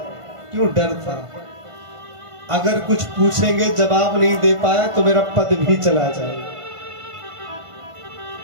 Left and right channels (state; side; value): late; left; 1.5 ms